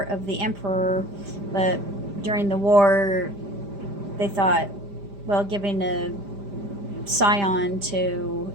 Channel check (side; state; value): left; late; 5.0 ms